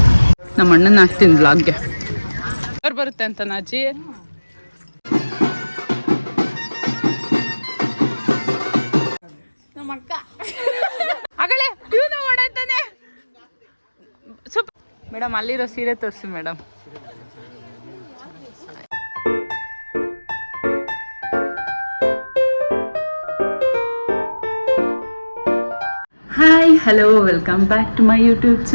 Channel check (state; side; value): inverted; both; correlation -1.00